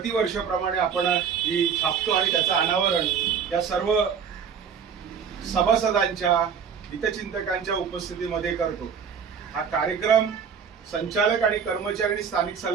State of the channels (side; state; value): left; quieter; 6.9 dB